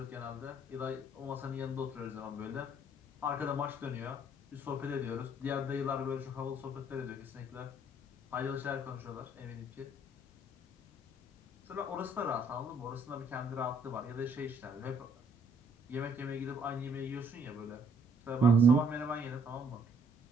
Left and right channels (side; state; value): both; normal; correlation 0.64